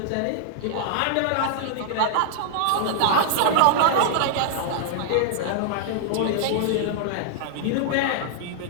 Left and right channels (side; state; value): both; different; correlation -0.01